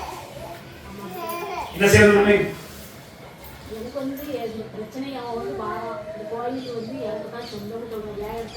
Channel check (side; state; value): both; identical; correlation 1.00